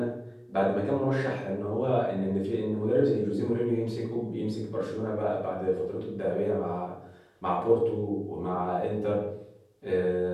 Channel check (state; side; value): identical; both; correlation 1.00